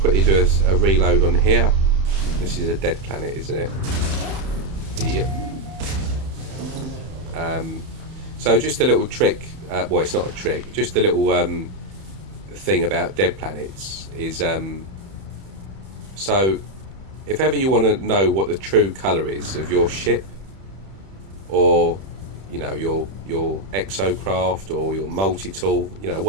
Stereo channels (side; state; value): left; late; 31 ms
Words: do a reload on here. This is a dead planet, isn't it? Yep. So just a little trick, well, it's not a trick, just a little thing about dead planets is, so if ever you want to know what the true colour is of your ship, or you know, your exocraft or your multi-tool, you know,